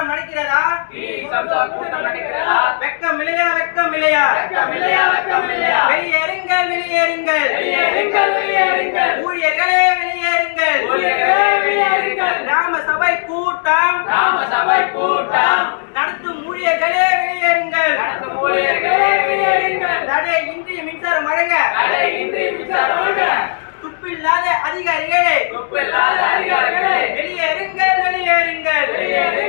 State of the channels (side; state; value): right; silent; digital silence